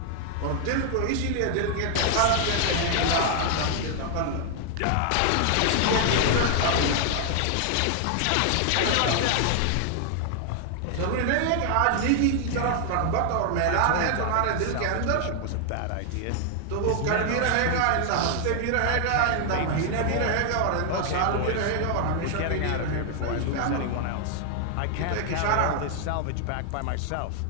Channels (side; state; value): both; different; correlation 0.00